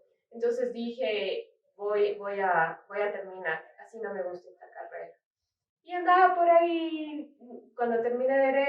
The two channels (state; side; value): identical; both; correlation 1.00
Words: Entonces dije, voy a terminar, así no me gusta esta carrera. Y andaba por ahí, cuando terminé